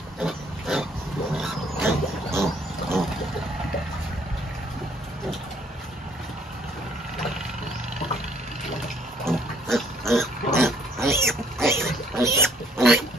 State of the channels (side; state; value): both; normal; correlation 0.63